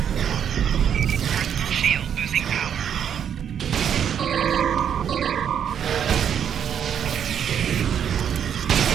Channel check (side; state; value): left; quieter; 8.6 dB